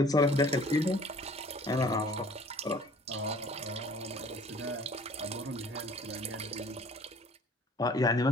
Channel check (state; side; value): normal; both; correlation 0.52